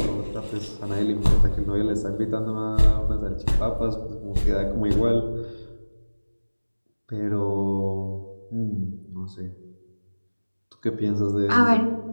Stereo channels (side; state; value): both; inverted; correlation -1.00